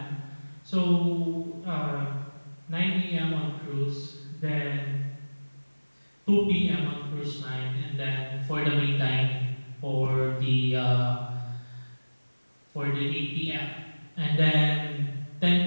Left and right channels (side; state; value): both; inverted; correlation -1.00